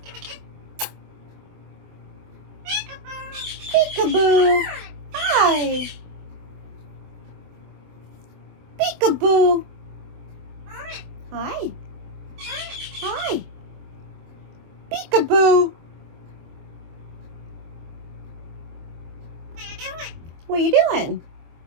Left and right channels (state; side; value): late; left; 24 ms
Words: Peekaboo. Hi. Peekaboo. Hi. Hi. Peekaboo. What are you doing?